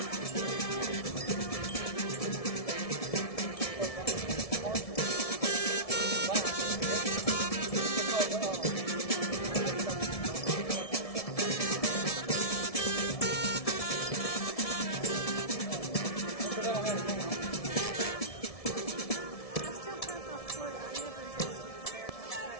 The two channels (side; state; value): right; late; 1.7 ms